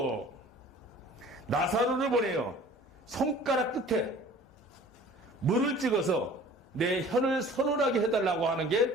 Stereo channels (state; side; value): normal; both; correlation 0.47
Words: 나사로를 보내요. 손가락 끝에 물을 찍어서 내 혀를 서늘하게 해달라고 하는